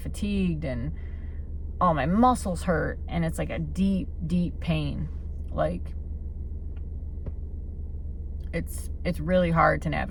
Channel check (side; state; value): both; identical; correlation 1.00